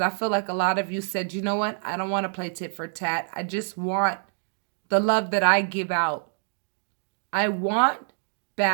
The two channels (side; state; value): left; silent; digital silence